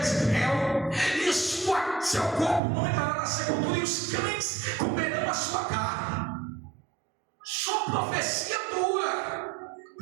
e seu corpo não entrará na sepultura, e os cães comerão a sua carne. Só profecia dura,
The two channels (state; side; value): drops out; left; at 2.6 s